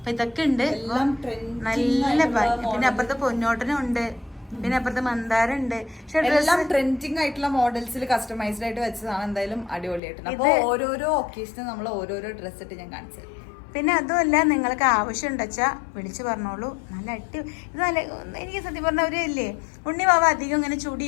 ഇതൊക്കെ ഉണ്ട്. നല്ല ഭംഗി. പിന്നെ അപ്പുറത്തെ പൊന്നോട്ടനും ഉണ്ട്, പിന്നെ അപ്പുറത്തെ മന്ദാരം ഉണ്ട്. എല്ലാം ട്രെൻഡിങ് ആയിട്ടുള്ള മോഡൽസിൽ കസ്റ്റമൈസ്ഡ് ആയിട്ട് വെച്ചതാണ്. എന്തായാലും അടിപൊളിയായിട്ടുണ്ട്. അപ്പൊ ഓരോരോ ഒക്കേഷനും നമ്മൾ ഓരോരോ ഡ്രസ് ഇട്ട് ഞാൻ കാണിച്ചു. പിന്നെ അതുമല്ല, നിങ്ങൾക്ക് ആവശ്യം ഉണ്ടെച്ചാ വിളിച്ചു പറഞ്ഞോളൂ. നല്ല ഇത് നല്ല, എനിക്ക് സത്യം പറഞ്ഞ ഒരു ഇല്ലേ, ഉണ്ണി വാവ അധികം ഇങ്ങനെ ചുടി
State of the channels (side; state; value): right; drops out; at 10.0 s